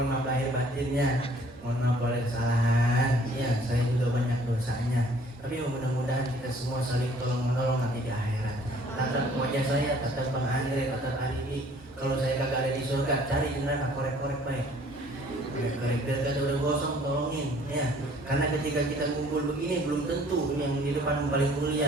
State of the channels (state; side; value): normal; both; correlation 0.56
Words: maaf lahir batinnya. Mohon maaf kalau ada kesalahan. Iya, saya juga banyak dosanya. Tapi mudah-mudahan kita semua saling tolong menolong nanti di akhirat. Tatap wajah saya, tatap Bang Andre, tatap Alibi. Kalau saya kagak ada di surga, cari di neraka, korek-korek baik. Korek biar kata udah gosong, tolongin ya. Karena ketika kita ngumpul begini belum tentu yang di depan paling